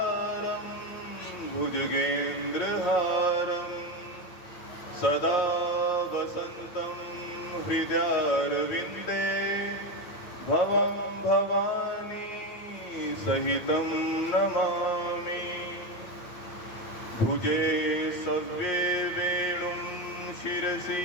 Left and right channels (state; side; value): late; right; 9.1 ms